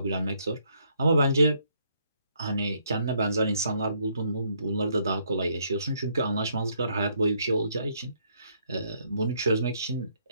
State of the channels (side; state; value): both; inverted; correlation -0.70